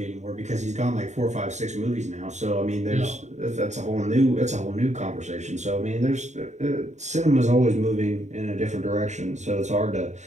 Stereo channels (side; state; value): left; late; 0.34 ms